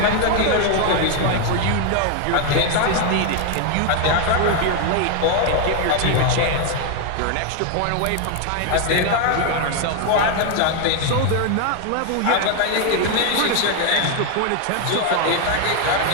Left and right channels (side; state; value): both; different; correlation 0.01